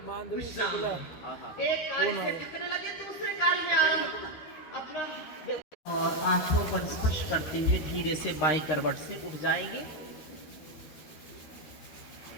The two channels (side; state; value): right; late; 13 ms